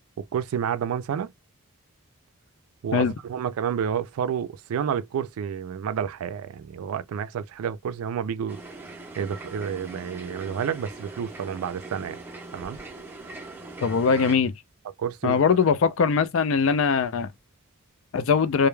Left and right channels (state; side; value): normal; both; correlation -0.07